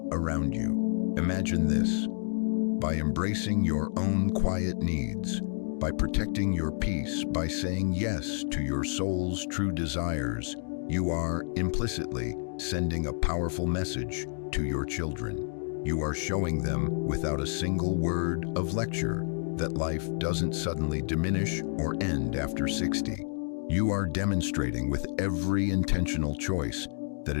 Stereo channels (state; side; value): silent; right; 58 dB below the other